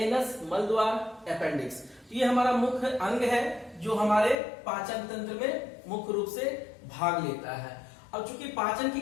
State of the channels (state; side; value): drops out; right; at 4.4 s